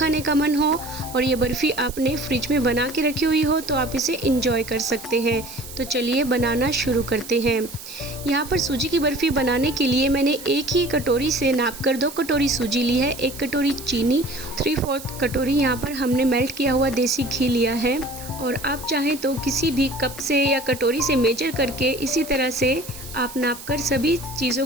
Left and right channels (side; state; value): right; noise; hiss, 14 dB below the sound